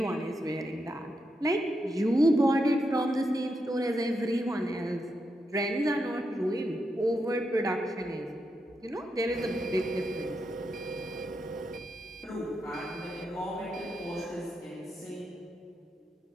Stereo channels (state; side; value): normal; both; correlation 0.84